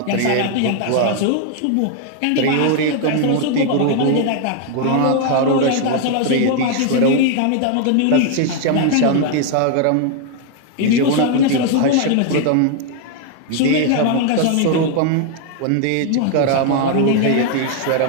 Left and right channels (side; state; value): both; different; correlation 0.00